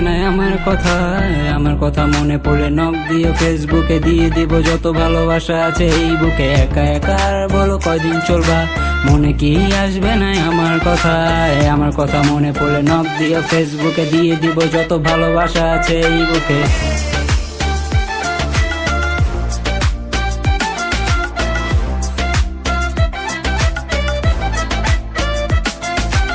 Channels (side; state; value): both; identical; correlation 1.00